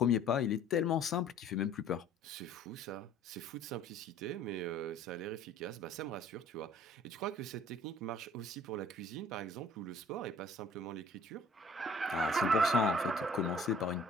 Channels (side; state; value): both; normal; correlation 0.52